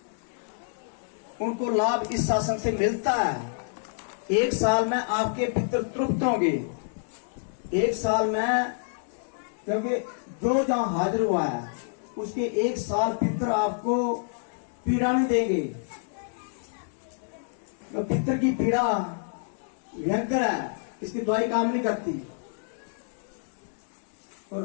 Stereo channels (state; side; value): silent; right; digital silence